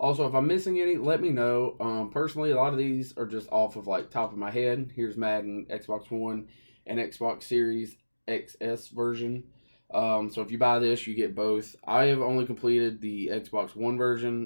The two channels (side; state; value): both; inverted; correlation -1.00